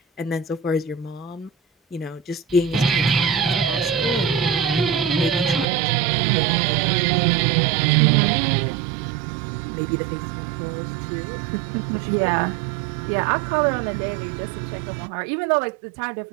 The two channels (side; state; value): left; drops out; at 5.7 s